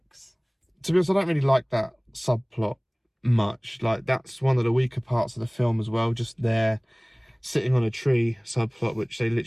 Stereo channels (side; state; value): both; identical; correlation 1.00